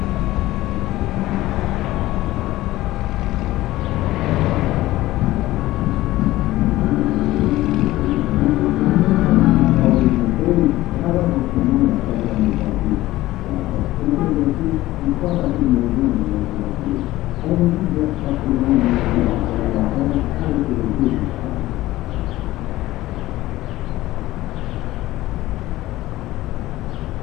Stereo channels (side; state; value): right; quieter; 16.7 dB